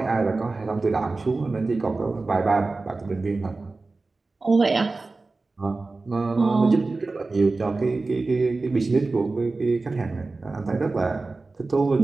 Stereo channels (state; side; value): quieter; left; 3.6 dB